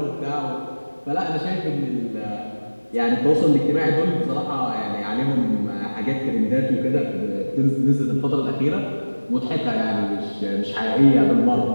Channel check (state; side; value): inverted; both; correlation -1.00